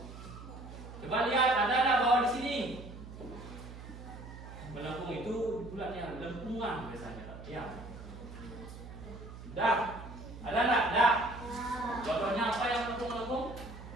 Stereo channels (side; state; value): right; noise; hum, 13 dB below the sound